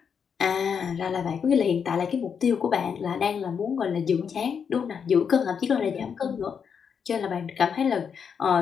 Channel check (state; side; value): quieter; right; 6.9 dB